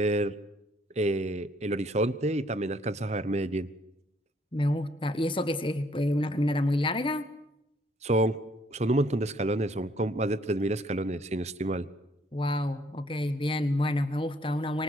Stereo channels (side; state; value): both; normal; correlation 0.65